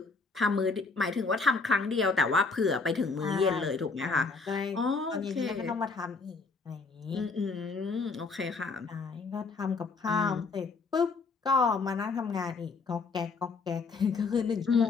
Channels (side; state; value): right; quieter; 4.3 dB